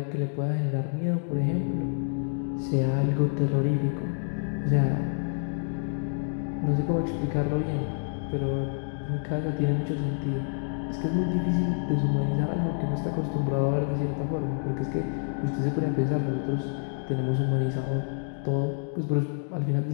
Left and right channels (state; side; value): silent; right; digital silence